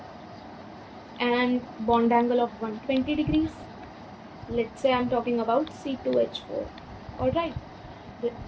and bond angle of 120 degrees. Let's say I'm talking about C2H4. Alright,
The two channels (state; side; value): identical; both; correlation 1.00